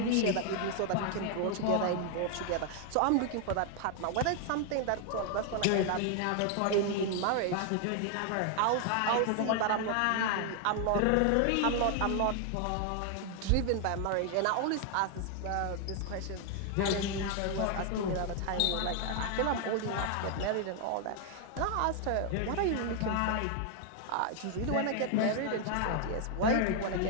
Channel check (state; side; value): different; both; correlation 0.00